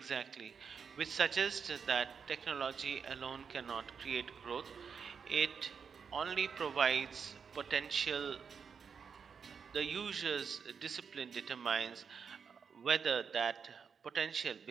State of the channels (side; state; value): left; quieter; 6.3 dB